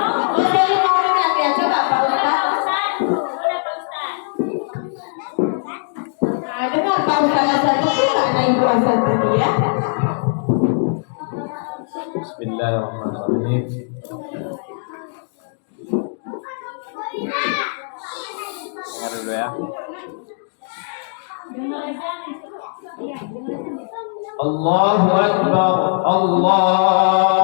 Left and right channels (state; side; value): silent; right; digital silence